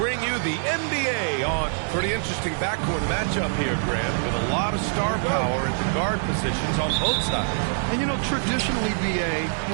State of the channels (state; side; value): silent; left; digital silence